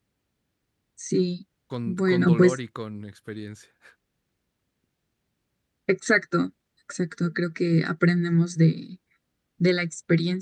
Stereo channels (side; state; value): both; identical; correlation 1.00